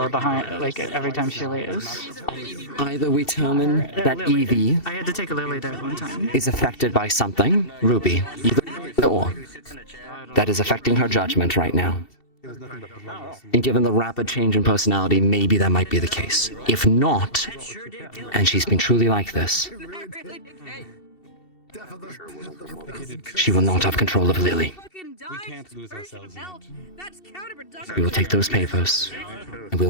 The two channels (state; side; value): late; right; 2.7 ms